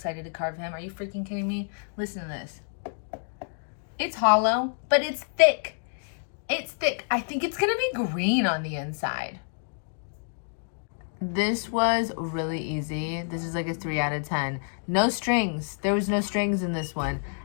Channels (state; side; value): silent; right; digital silence